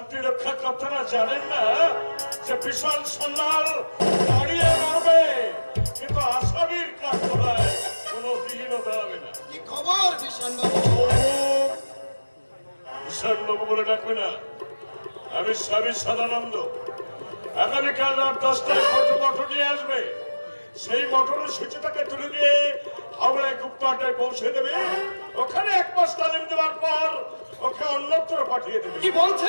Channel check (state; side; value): inverted; both; correlation -1.00